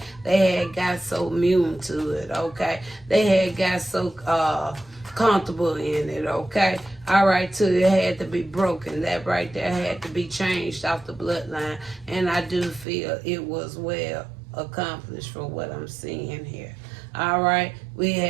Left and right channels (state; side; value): drops out; left; at 12.9 s